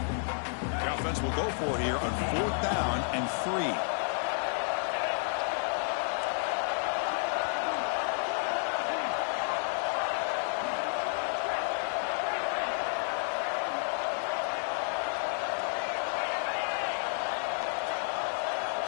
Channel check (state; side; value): silent; right; 57 dB below the other